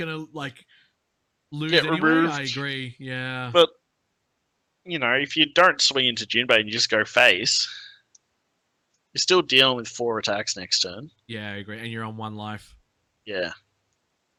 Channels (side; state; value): both; identical; correlation 1.00